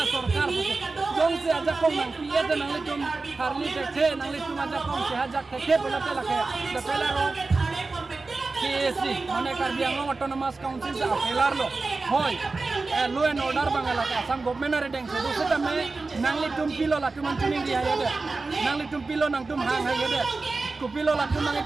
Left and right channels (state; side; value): quieter; left; 3.7 dB